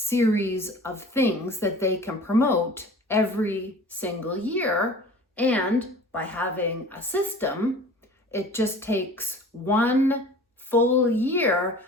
of things that they can promote every single year. And by having a system, it just takes one full year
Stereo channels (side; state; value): both; normal; correlation 0.43